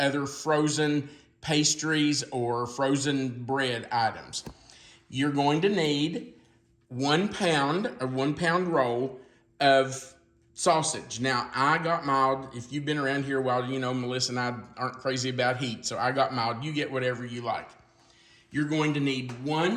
other frozen pastries or frozen bread items. You're going to need 1 pound, a 1 pound roll of sausage. Now, I got mild. If you've been around here a while, you know Melissa and I aren't crazy about heat, so I got mild. You get whatever you like. You're going to need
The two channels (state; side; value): identical; both; correlation 1.00